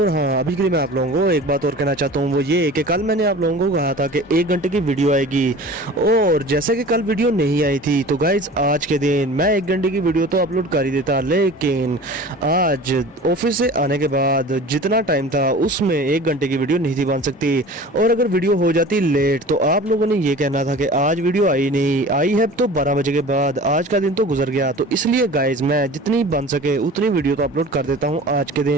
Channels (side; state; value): both; normal; correlation 0.40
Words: हाँ अभी के लिए मैं आप लोगों को एक बात और कहना चाहता हूँ, वो ये कि कल मैंने आप लोगों को कहा था कि 1 घंटे की वीडियो आएगी और जैसे कि कल वीडियो नहीं आई थी तो गाइस आज के दिन मैं 1 घंटे की वीडियो तो अपलोड कर ही देता, लेकिन आज ऑफिस से आने के बाद जितना टाइम था उसमें 1 घंटे की वीडियो नहीं थी बन सकती, और अगर वीडियो हो जाती लेट तो आप लोगों ने ये कहना था कि आज वीडियो आई नहीं, आई है तो 12 बजे के बाद, आज का दिन तो गुजर गया। तो इसलिए गाइस मैं जितनी बन सके उतनी वीडियो तो अपलोड कर देता हूं आज के